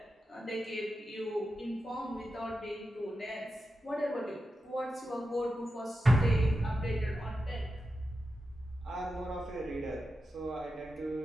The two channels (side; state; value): both; normal; correlation 0.90